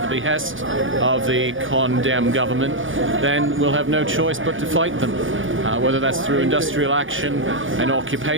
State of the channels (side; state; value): left; late; 0.57 ms